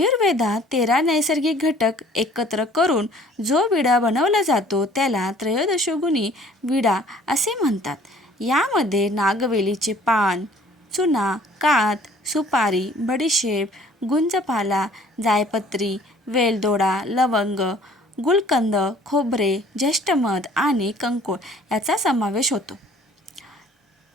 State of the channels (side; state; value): both; normal; correlation 0.54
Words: 13 नैसर्गिक घटक एकत्र करून जो विडा बनवला जातो त्याला त्रयोदशगुणी विडा असे म्हणतात. यामध्ये नागवेलीचे पान, चुना, कात, सुपारी, बडीशेप, गुंजपाला, जायपत्री, वेलदोडा, लवंग, गुलकंद, खोबरे, ज्येष्ठमध आणि कंकोळ याचा समावेश होतो.